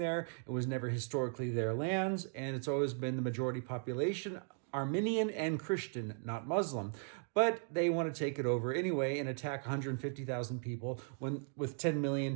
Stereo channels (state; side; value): silent; left; 53 dB below the other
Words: It was never historically their lands, and it's always been the majority population, Armenian and Christian, not Muslim. But they want to take it over anyway and attack 150,000 people with 10